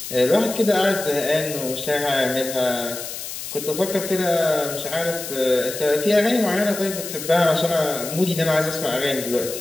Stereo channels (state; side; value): noise; left; hiss, 8 dB below the sound